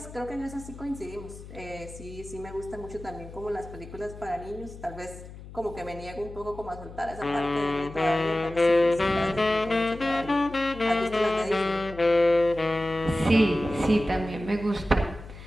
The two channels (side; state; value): left; noise; hum, 15 dB below the sound